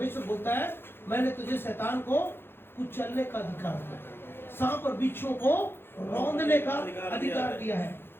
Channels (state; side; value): late; right; 0.11 ms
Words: बोलता है, मैंने तुझे शैतान को कुचलने का अधिकार दिया, सांप और बिच्छुओं को रौंदने का अधिकार दिया है।